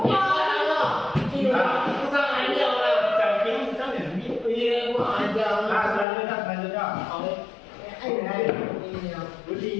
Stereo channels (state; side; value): drops out; right; at 6.1 s